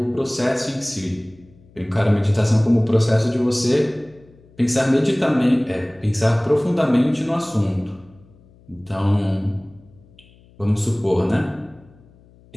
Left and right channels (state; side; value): noise; left; hum, 27 dB below the sound